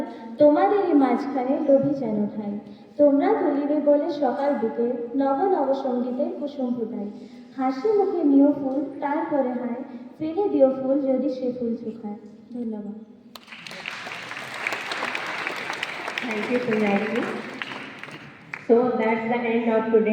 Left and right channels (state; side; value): identical; both; correlation 1.00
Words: তোমাদেরই মাঝখানে লোভী যেন ঠাই। তোমরা তুলিবে বলে সকাল বিকেল, নব নব সঙ্গীতের কুসুম ফুটাই। হাসি মুখে নিও ফুল তারপরে হায়, ফেলে দিও ফুল যদি সে ফুল শুকায়। ধন্যবাদ। Thank you, Sunayati. So that's the end of